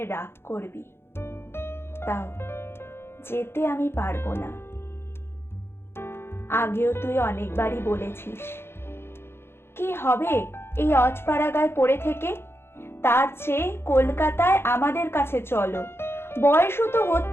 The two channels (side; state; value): right; late; 0.12 ms